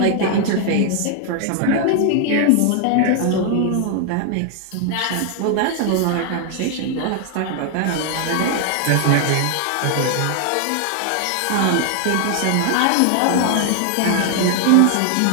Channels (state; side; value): different; both; correlation 0.00